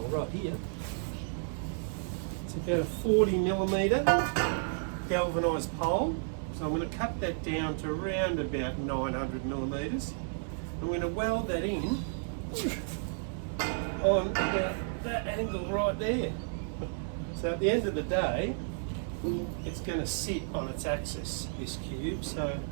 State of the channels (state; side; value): silent; left; digital silence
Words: right here. It's about a 40mm galvanised pole. So I'm going to cut that down to around about 900mm. I'm going to weld that in on about that angle right there. So at the end of the day, it's going to sit on its axis, this cube. So